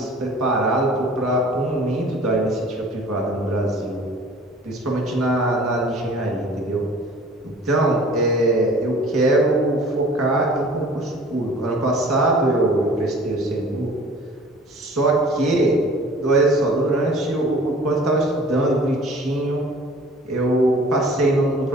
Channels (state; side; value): normal; both; correlation 0.48